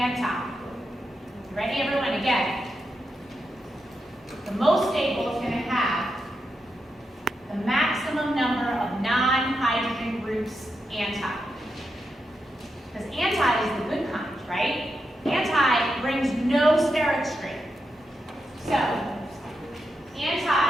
Ready, everyone? Again. The most stable is going to have the maximum number of non-hydrogen groups anti. Because anti is the good kind, right? Anti brings no steric strain. So, anti,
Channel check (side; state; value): both; normal; correlation 0.86